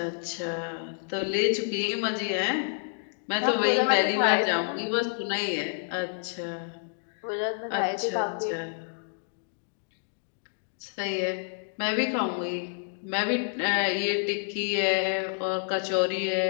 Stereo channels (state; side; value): silent; right; digital silence